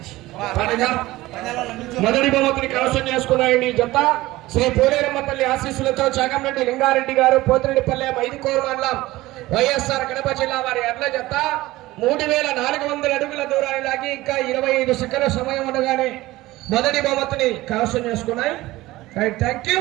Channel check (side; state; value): left; quieter; 18.1 dB